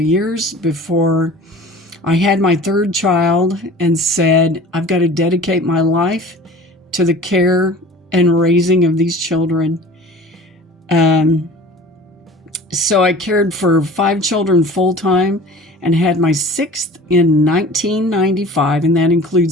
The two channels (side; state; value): both; normal; correlation 0.42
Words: years before I had my 3rd child and said, I've got to dedicate my life to the care and raising of these children. So I cared for 5 children full-time and had my 6th in 1995, and that